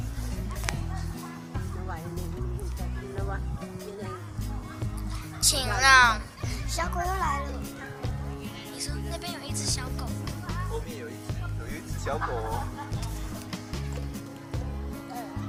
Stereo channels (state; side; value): identical; both; correlation 1.00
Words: 请让小狗又来了。你说那边有一只小狗，后面有一只小狗哦。